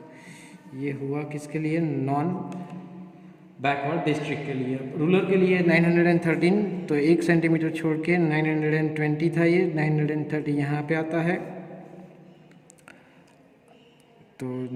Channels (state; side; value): identical; both; correlation 1.00